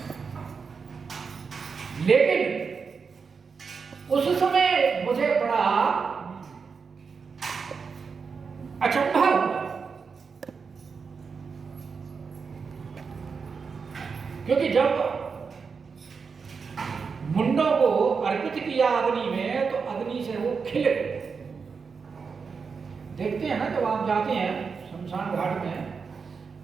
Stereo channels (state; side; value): quieter; left; 5.4 dB